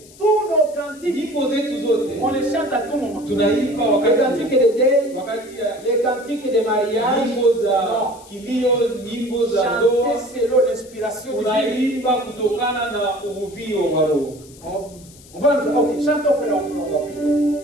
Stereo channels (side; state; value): left; noise; hiss, 23 dB below the sound